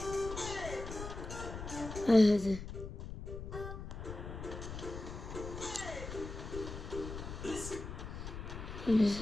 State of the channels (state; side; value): noise; left; rumble, 8 dB below the sound